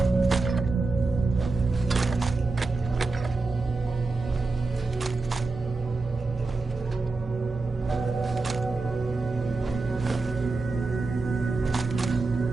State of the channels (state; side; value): quieter; left; 3.7 dB